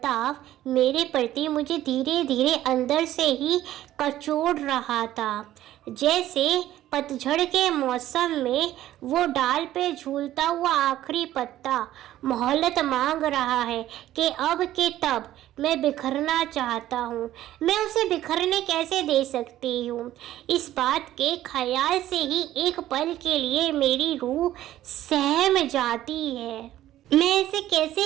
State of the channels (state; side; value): quieter; left; 13.6 dB